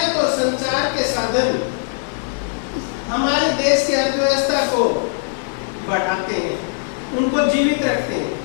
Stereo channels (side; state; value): right; silent; digital silence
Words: और संचार के साधन हमारे देश की अर्थव्यवस्था को बढ़ाते हैं, उनको जीवित रखते हैं।